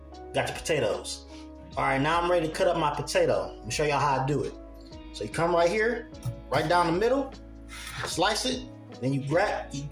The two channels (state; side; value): identical; both; correlation 1.00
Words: got the potatoes. All right, now I'm ready to cut up my potato. Let me show y'all how I do it. So you come right here, right down the middle, slice it, then you